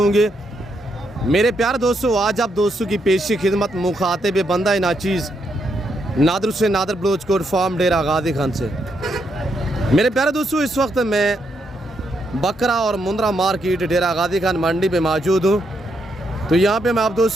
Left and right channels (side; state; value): both; normal; correlation 0.78